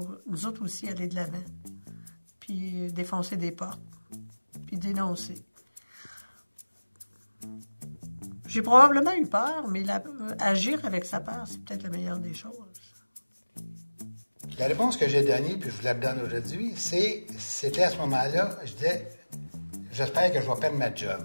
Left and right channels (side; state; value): both; inverted; correlation -1.00